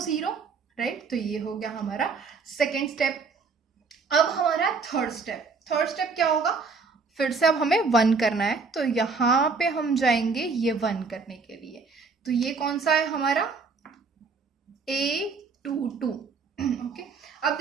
0, राइट। तो ये हो गया हमारा सेकेंड स्टेप। अब हमारा थर्ड स्टेप, थर्ड स्टेप क्या होगा, फिर से अब हमें 1 करना है। तो यहाँ पे हम जाएंगे ये 1 करने के लिए। तो ये कौन सा है हमारा A22, ओके। अब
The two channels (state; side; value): quieter; left; 4.7 dB